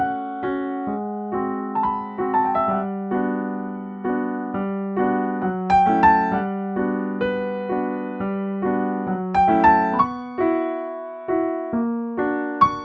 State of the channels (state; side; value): identical; both; correlation 1.00